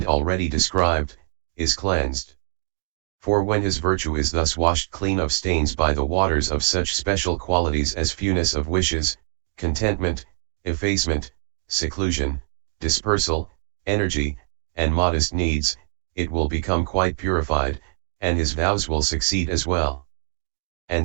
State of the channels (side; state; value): left; silent; digital silence